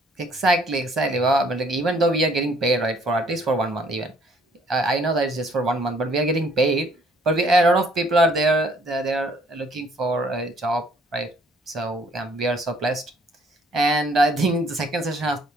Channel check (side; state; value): both; normal; correlation 0.62